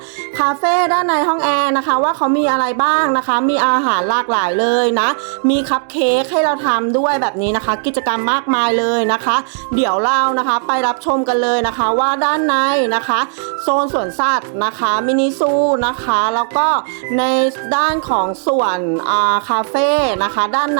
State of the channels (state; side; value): silent; left; digital silence